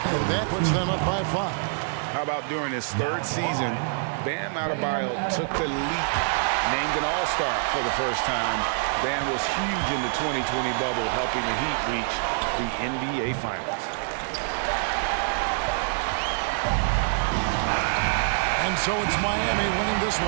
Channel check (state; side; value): silent; left; digital silence